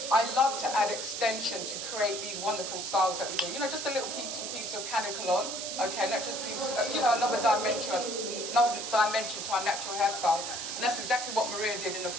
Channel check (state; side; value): noise; right; hiss, 5 dB below the sound